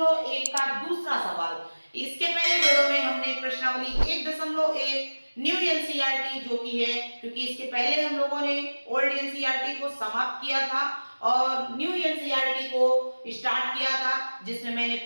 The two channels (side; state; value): both; inverted; correlation -1.00